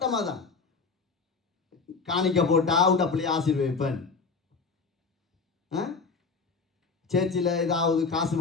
அதான். காணிக்க போட்டா உண்ட பிள்ளையை ஆசீர்வதிப்பேன். சேர்ச்சில் ஏதாவது காசு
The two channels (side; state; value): right; quieter; 4.6 dB